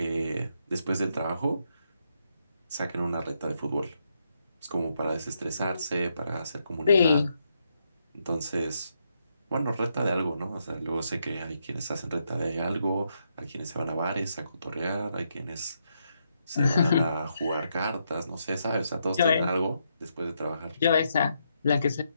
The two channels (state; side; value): inverted; both; correlation -0.79